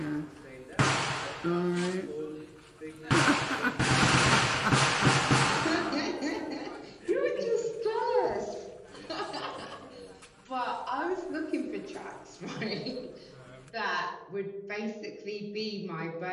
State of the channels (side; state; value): both; identical; correlation 1.00